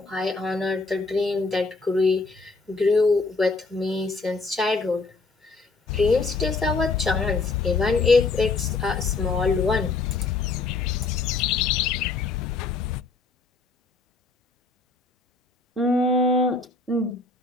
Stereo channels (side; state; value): right; quieter; 3.8 dB